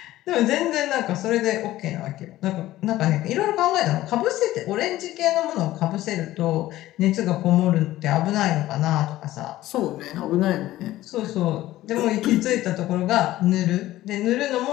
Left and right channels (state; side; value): quieter; right; 15.5 dB